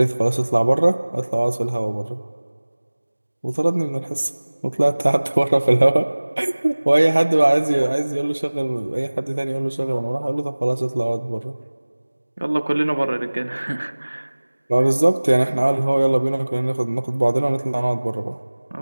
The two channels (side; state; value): both; inverted; correlation -1.00